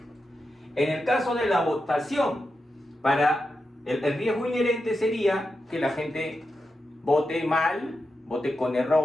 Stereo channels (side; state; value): both; normal; correlation 0.89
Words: En el caso de la votación, para el riesgo inherente sería que la gente vote mal, vote con